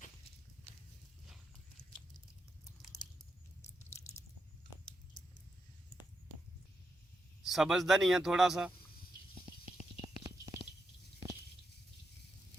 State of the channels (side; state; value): both; normal; correlation 0.84